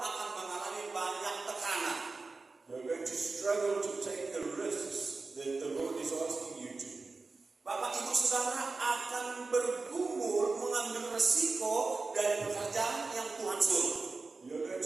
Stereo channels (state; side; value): quieter; left; 3.9 dB